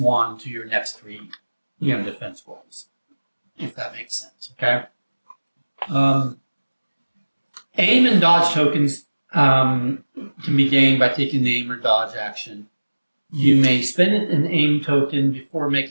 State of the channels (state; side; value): inverted; both; correlation -1.00